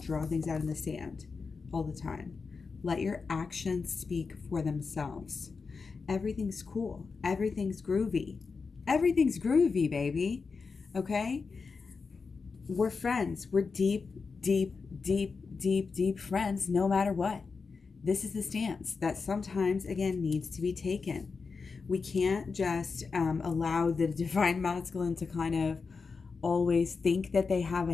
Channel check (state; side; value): quieter; right; 4.8 dB